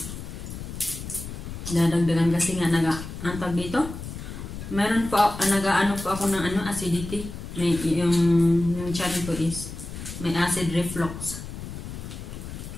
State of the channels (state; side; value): noise; left; rumble, 9 dB below the sound